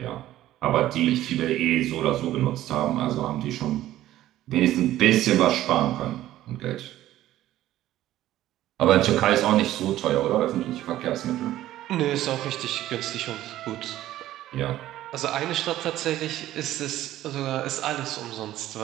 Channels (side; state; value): left; quieter; 14.0 dB